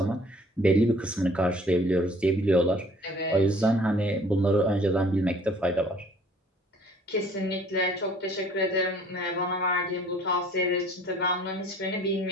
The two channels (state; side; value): normal; both; correlation 0.54